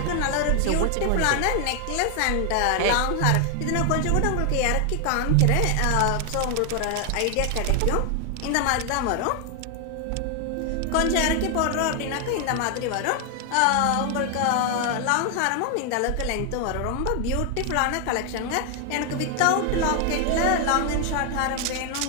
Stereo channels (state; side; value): different; both; correlation 0.00